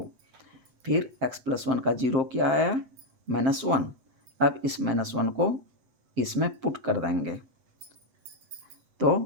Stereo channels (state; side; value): late; left; 7.8 ms